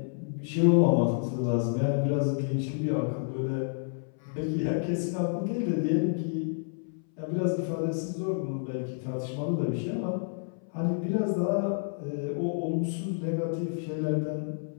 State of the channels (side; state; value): right; silent; 58 dB below the other